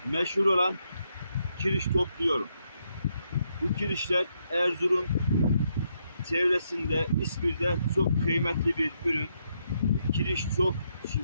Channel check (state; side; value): inverted; both; correlation -0.77